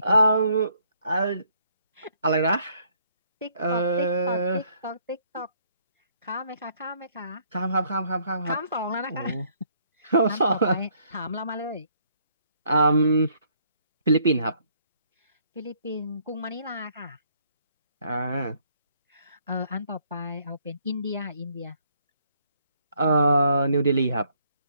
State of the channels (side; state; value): both; inverted; correlation -0.67